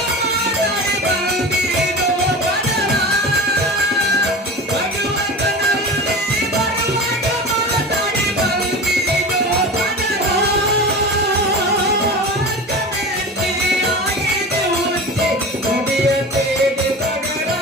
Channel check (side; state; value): both; normal; correlation 0.31